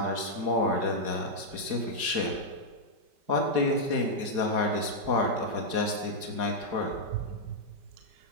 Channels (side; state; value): left; late; 4.8 ms